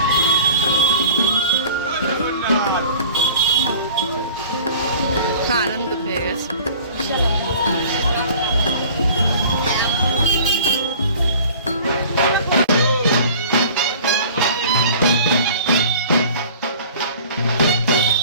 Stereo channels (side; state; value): both; inverted; correlation -0.45